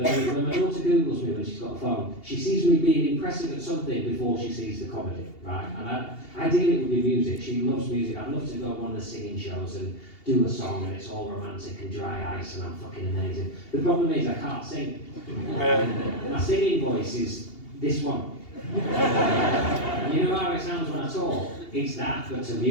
my daughter Googles me when she's got a phone, she sees me being impressive at something before she sees the comedy, right? And ideally it would be music. She loves music. I'd love to go on one of the singing shows and do a song and it's all romantic and dry ice and I'm fucking amazing. The problem is I can't sing. My singing voice is this one. You know how it sounds when I talk? It's that, but to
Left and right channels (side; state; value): right; late; 2.8 ms